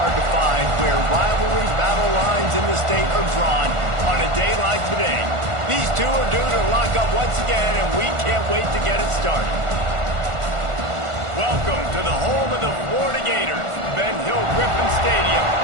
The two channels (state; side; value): late; left; 1.5 ms